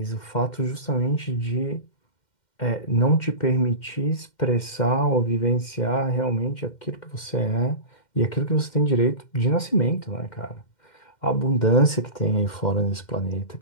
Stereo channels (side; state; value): right; late; 2.1 ms